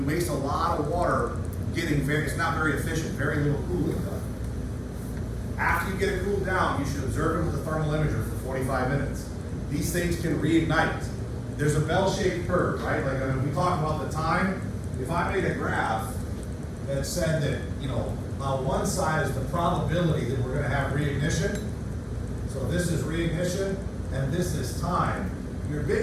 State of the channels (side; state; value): both; identical; correlation 1.00